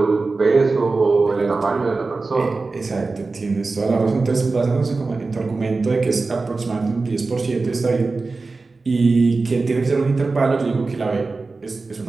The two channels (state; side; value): quieter; left; 3.8 dB